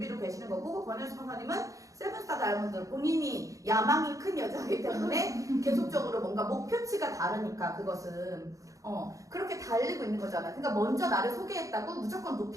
계시는 거고, 권혜진 스폰서님은 세븐스타 다이아몬드 본인이 야망이 큰 여자이기 때문에 계속적으로 뭔가 목표치가 다르니까 그것은 그렇게 달리고 있는 거잖아. 그러니까 먼저 나를 소개했다고 무조건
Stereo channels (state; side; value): late; left; 0.16 ms